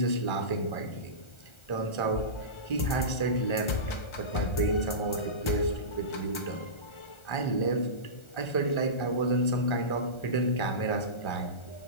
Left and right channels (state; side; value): late; right; 1.4 ms